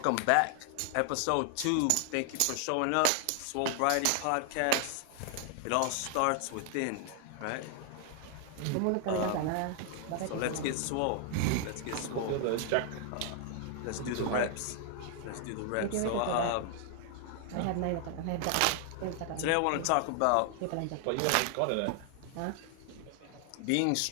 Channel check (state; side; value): different; both; correlation 0.00